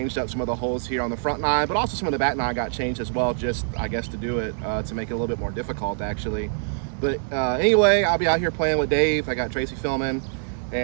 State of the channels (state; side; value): silent; left; digital silence